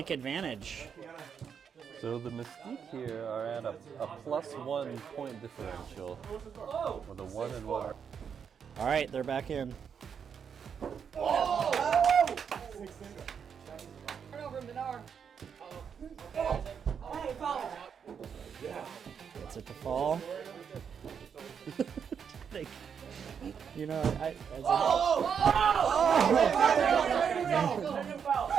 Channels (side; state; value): left; quieter; 7.2 dB